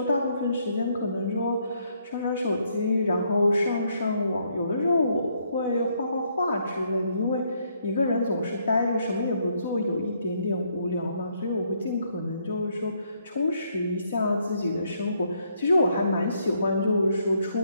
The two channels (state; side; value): inverted; both; correlation -0.72